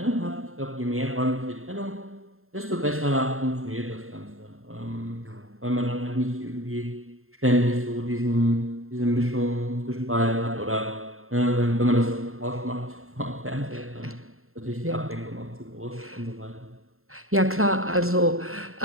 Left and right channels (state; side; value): late; left; 0.61 ms